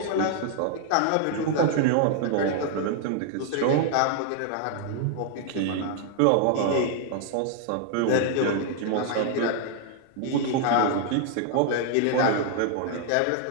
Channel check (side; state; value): both; different; correlation 0.00